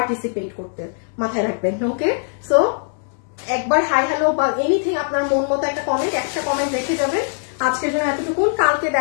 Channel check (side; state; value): right; silent; 63 dB below the other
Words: করতে, মাথায় রাখবেন। ওকে সো একবার হাই হ্যালো বা এনিথিং আপনার মন মতো একটা কমেন্ট রেখে যাবেন। আজকের জন্য এতটুকুন, কালকে